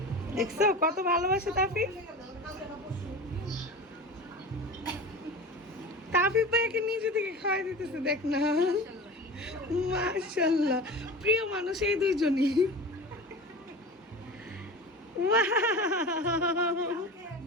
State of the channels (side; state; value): both; normal; correlation 0.32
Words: দেখছো কত ভালোবাসে তাফিফ। তাফিফ ভাইকে নিজে থেকে খাওয়াই দিতেছে, দেখ না, মাশাআল্লাহ, প্রিয় মানুষ এই দুইজনই। ওয়াও,